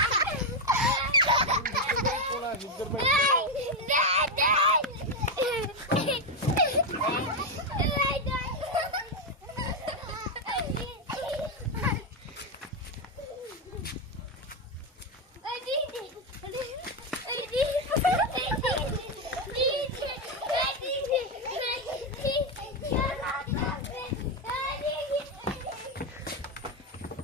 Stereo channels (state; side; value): normal; both; correlation 0.06